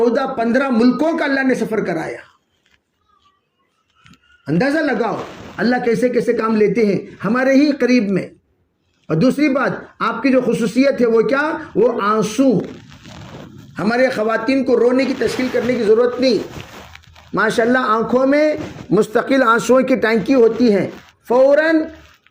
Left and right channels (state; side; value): identical; both; correlation 1.00